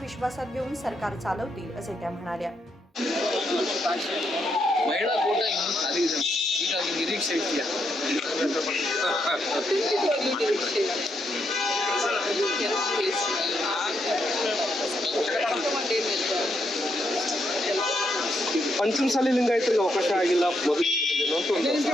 विश्वासात घेऊन सरकार चालवतील असे त्या म्हणाल्या. ಮಹಿಳಾ ಕೋಟ ಇನ್ನೂ ಖಾಲಿ ಇದೆ. ಹೀಗಾಗಿ ನಿರೀಕ್ಷೆ ಇದೆಯಾ? ಪಂಚಮಸಾಲಿ ಲಿಂಗಾಯತರಿಗೆ ಅವಕಾಶ ಆಗಿಲ್ಲ.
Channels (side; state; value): both; normal; correlation 0.78